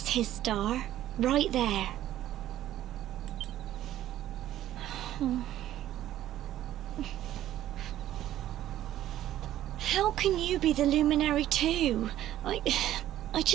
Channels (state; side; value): quieter; left; 13.0 dB